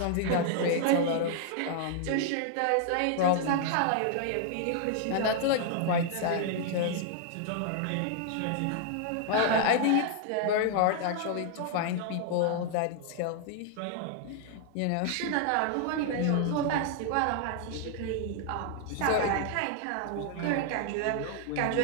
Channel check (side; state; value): both; different; correlation 0.00